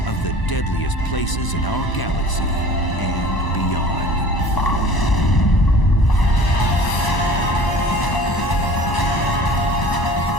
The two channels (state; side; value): late; right; 1.0 ms